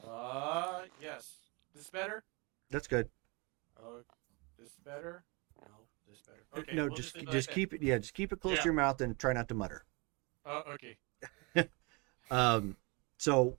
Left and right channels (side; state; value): left; quieter; 29.2 dB